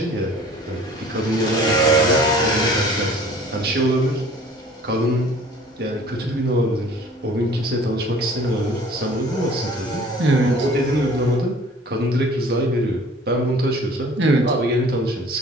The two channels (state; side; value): normal; both; correlation 0.50